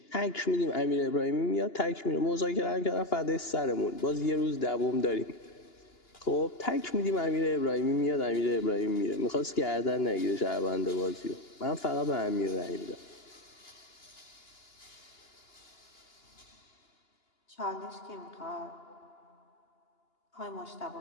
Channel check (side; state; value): right; late; 2.9 ms